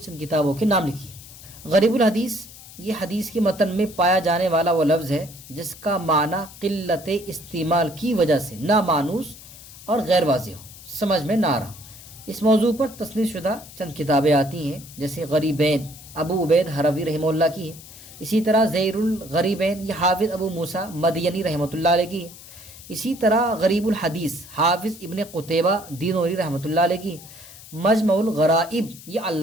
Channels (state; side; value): noise; left; hiss, 18 dB below the sound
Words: کتابوں کے نام لکھیے۔ غریب الحدیث یہ حدیث کے متن میں پایا جانے والا وہ لفظ ہے جس کا معنی قلت استعمال کی وجہ سے نامانوس اور غیر واضح ہو، سمجھ میں نہ آ رہا۔ اس موضوع پر تصنیف شدہ چند کتابیں آتی ہیں، جیسے غریبین ابو عبید حروی رحمہ اللہ کی ہے، اسی طرح زیر الغریبین یہ حافظ ابو موسیٰ مدینی رحمۃ اللہ علیہ کی ہے، اسی طرح غریب الحدیث حافظ ابن قتیبہ دینوری رحمۃ اللہ علیہ کی ہے، مجمع الغرائب یہ